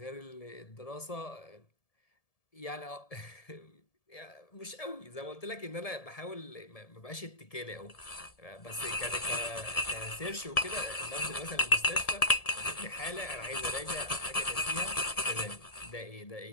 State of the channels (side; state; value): right; late; 1.7 ms